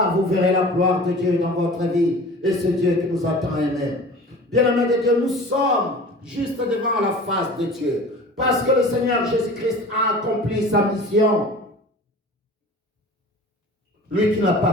vous verrez la gloire de Dieu dans votre vie, et c'est Dieu qui nous a tant aimés. Bien-aimé de Dieu, nous sommes juste devant la face de Dieu, parce que le Seigneur Jésus-Christ a accompli sa mission. Lui qui n'a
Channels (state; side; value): normal; both; correlation 0.41